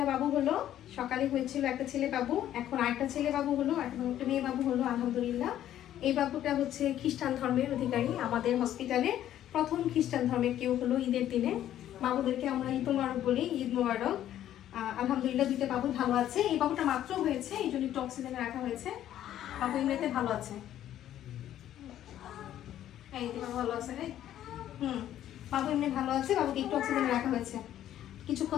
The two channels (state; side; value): quieter; right; 11.8 dB